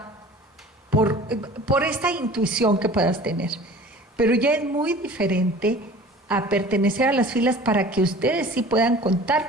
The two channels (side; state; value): both; normal; correlation 0.44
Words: por esta intuición que puedas tener. Pero ya es muy diferente a pertenecer a las filas para que ustedes sí puedan contar